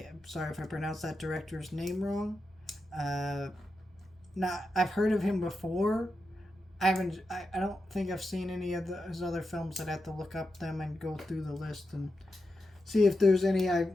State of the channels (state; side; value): normal; both; correlation 0.88